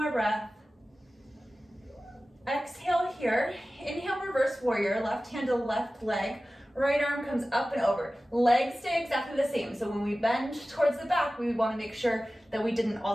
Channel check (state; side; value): normal; both; correlation 0.96